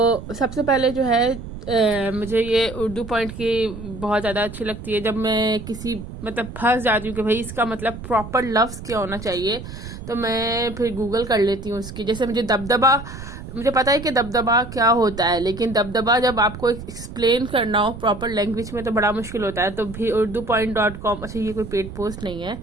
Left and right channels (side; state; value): right; noise; rumble, 11 dB below the sound